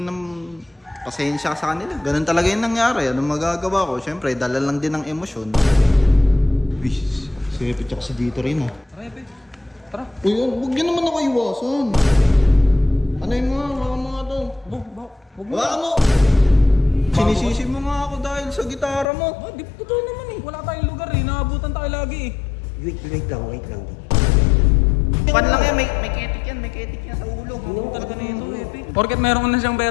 pasensya sa kanila. Ganun talaga yung nangyari. Anong magagawa ko? Siyempre, dala lang din ng emosyon. Uy, sipit ako si dito rin ah. Tara, Epe. Tara. Uy, huwag niyo naman ako iwasan. Ano yung mga to? Huwag mo. Wala mo! Sinisisi mo nga ako dahil sa gitara mo. Di totoo naman eh. Wala tayong lugar eh. Naabutan tayo lagi eh. Wait lang. Pan lang yan, may ketik yan sa ulo. Ano talaga na ito, Epe? Porket meron na siyang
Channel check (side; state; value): right; drops out; at 19.1 s